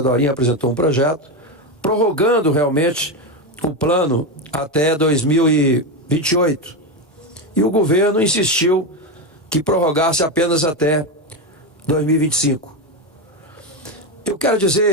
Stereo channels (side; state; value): both; normal; correlation 0.12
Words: Dorinha apresentou um projeto, prorrogando realmente o plano até 2028. E o governo insistiu que prorrogasse apenas até 2025. Eu quero